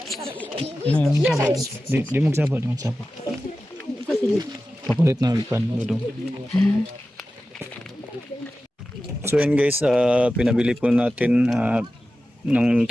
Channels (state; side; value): normal; both; correlation 0.94